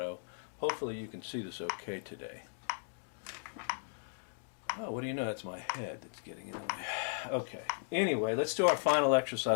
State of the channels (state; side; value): silent; right; digital silence